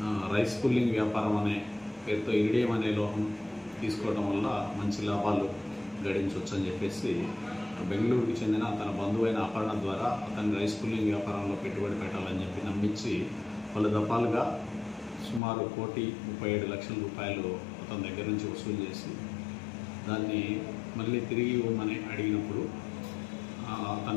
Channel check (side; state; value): right; drops out; at 15.4 s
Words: రైస్ పుల్లింగ్ వ్యాపారం అనే పేరుతో ఇరిడియం అనే లోహం తీసుకోవడం వల్ల మంచి లాభాలు గడించవచ్చు అని చెప్పేసి బెంగళూరుకి చెందిన తన బంధువైన అపర్ణ ద్వారా అతన్ని రైస్ పుల్లింగ్ వ్యాపారంలో పెట్టుబడి పెట్టాలని చెప్పి నమ్మించి పలు దఫాలుగా సుమారు 1,37,00,000 రూపాయలు అతని దగ్గర నుంచి వసూలు చేసి దాన్ని మళ్ళీ తిరిగి ఇవ్వమని అడిగినప్పుడు